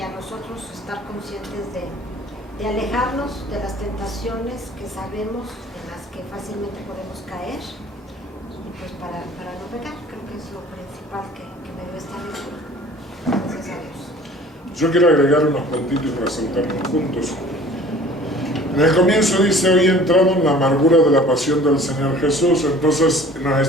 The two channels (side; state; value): both; normal; correlation 0.48